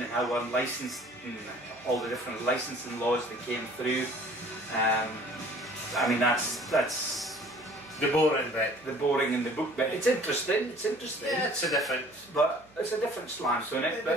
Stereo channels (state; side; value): noise; right; hum, 29 dB below the sound